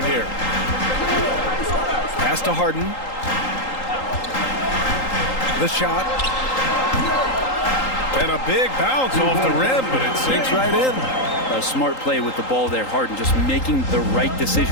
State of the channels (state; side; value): late; right; 3.8 ms